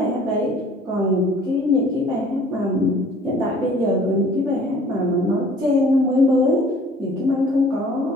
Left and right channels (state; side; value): normal; both; correlation 0.52